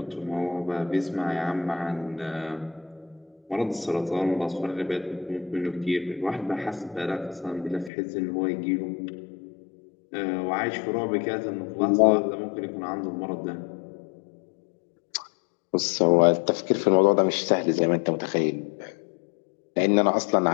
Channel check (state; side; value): drops out; right; at 7.9 s